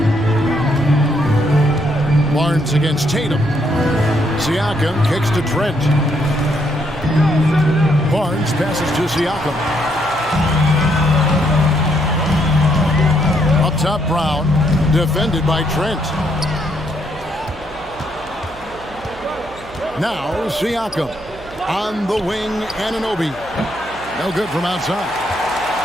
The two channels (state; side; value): noise; right; hum, 20 dB below the sound